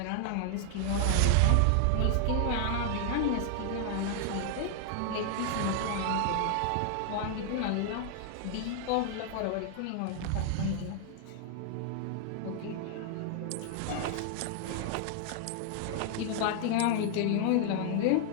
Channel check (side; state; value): both; different; correlation 0.00